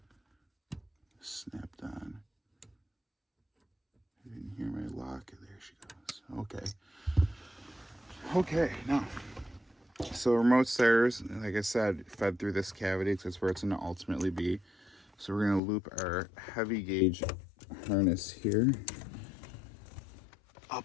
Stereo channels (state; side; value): drops out; right; at 15.6 s